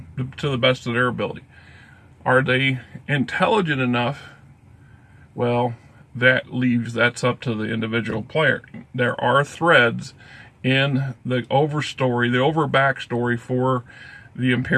to the best of their ability. Are they intelligent enough? Well, that's up to the individual player. There are threads in the over backstory for the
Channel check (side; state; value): both; identical; correlation 1.00